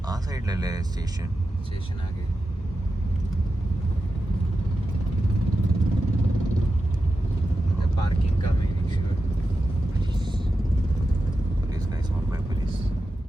ആ സൈഡിലല്ലേ സ്റ്റേഷൻ ആകെ. पार्किंग का मेक श्योर. पुलिस का इस्तेमाल by पुलिस.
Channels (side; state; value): both; normal; correlation 0.91